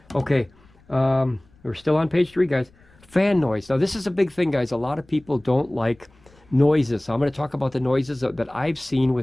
Okay, we're still on page 3, guys. Fan noise. Now, this is a big thing, guys. A lot of people don't like noises. So I'm going to talk about the noises that I've seen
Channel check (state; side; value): noise; left; rumble, 29 dB below the sound